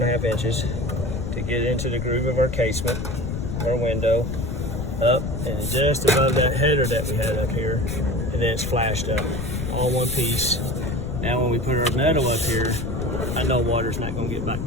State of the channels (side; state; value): left; noise; rumble, 5 dB below the sound